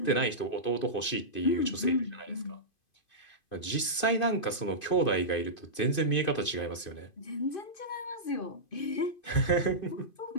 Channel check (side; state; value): right; late; 2.5 ms